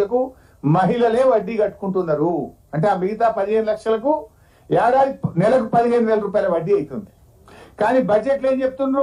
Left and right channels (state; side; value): identical; both; correlation 1.00